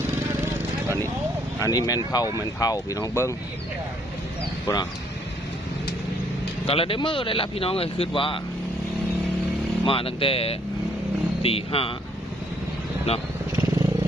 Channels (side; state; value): both; normal; correlation 0.67